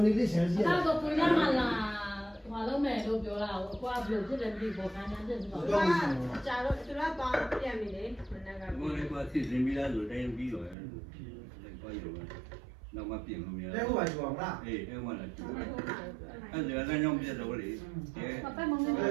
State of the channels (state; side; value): drops out; left; at 10.8 s